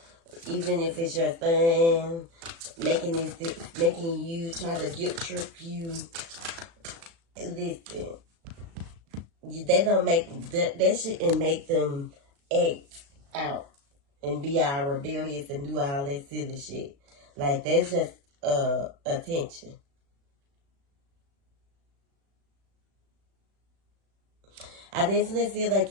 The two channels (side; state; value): left; late; 36 ms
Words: even if it's your son, making you try to guilt trip you. Listen, they don't make that shouldn't make them act out and be all rebellious and do all that silly shit. Like, that's just attention. I definitely feel like